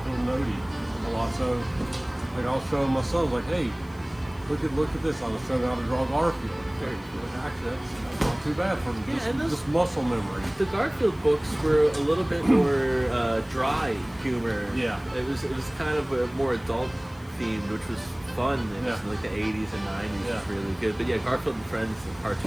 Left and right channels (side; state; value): left; noise; hiss, 27 dB below the sound